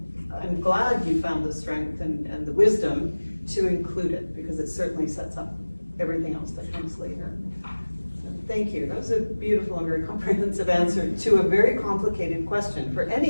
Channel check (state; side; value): inverted; both; correlation -1.00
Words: I'm glad you found the strength and the wisdom to include it, because it certainly sets up everything else that comes later. So thank you. That was a beautiful and very comprehensive answer to a very complicated question. For